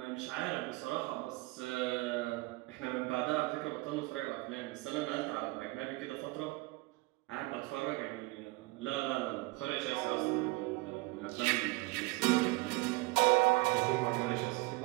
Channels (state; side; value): quieter; left; 23.1 dB